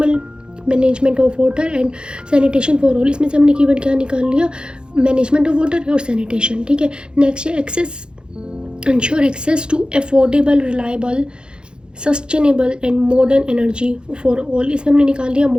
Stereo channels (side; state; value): left; late; 0.050 ms